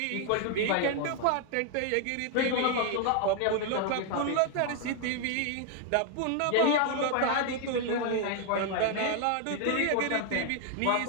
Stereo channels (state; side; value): different; both; correlation 0.00